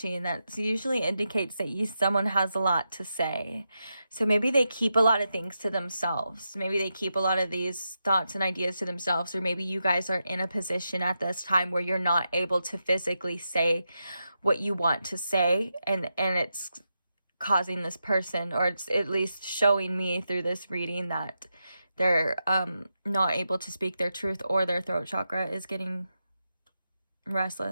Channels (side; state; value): both; inverted; correlation -0.87